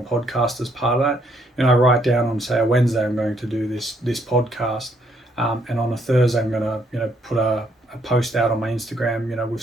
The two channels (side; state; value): both; normal; correlation 0.70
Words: as part of that, I write down on, say, a Wednesday I'm going to do this podcast, and on a Thursday I'm going to put a post out on my Instagram with